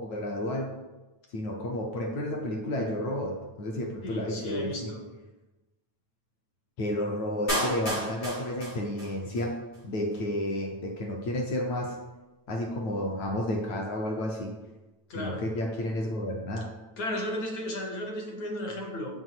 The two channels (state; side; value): late; right; 9.1 ms